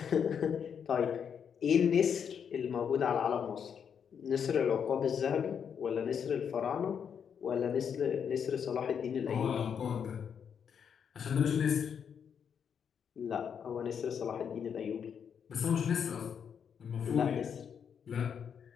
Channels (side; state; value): right; quieter; 7.5 dB